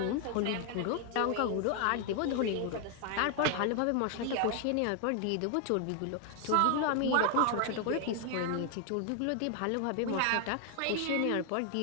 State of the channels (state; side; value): different; both; correlation 0.00